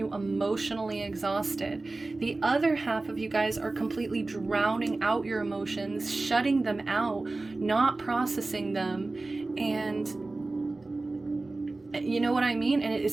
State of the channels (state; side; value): quieter; left; 3.2 dB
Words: emotionally exhausted. The other half of you guys are completely drowning out your emotions, shutting them out, not processing them, and You know what I mean? And